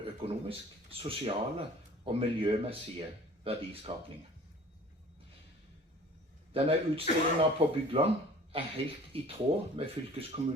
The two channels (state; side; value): normal; both; correlation 0.47